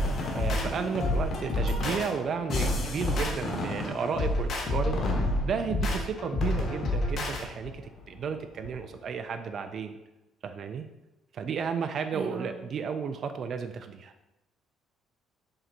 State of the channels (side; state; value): both; normal; correlation 0.67